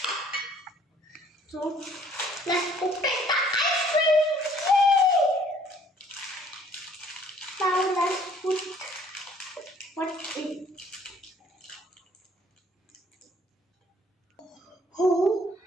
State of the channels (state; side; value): normal; both; correlation 0.59